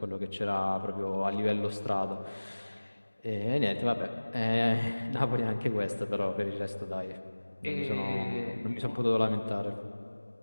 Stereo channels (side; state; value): both; inverted; correlation -1.00